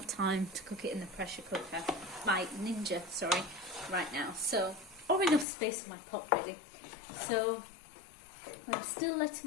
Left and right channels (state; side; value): drops out; right; at 5.5 s